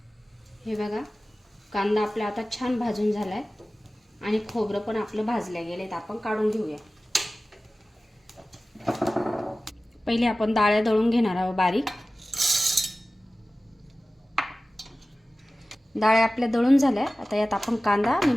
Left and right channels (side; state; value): both; normal; correlation 0.96